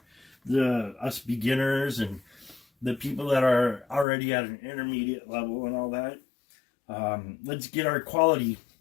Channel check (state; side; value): drops out; right; at 4.0 s